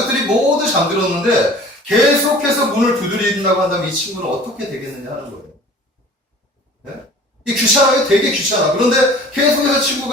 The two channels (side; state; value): both; normal; correlation 0.46